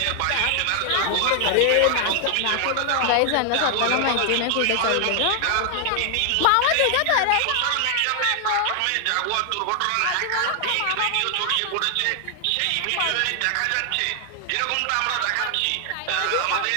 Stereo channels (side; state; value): both; different; correlation 0.00